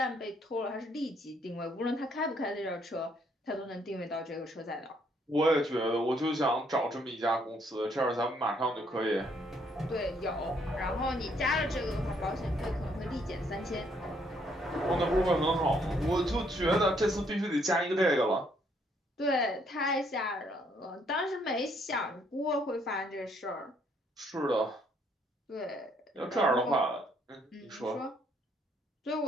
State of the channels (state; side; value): normal; both; correlation 0.69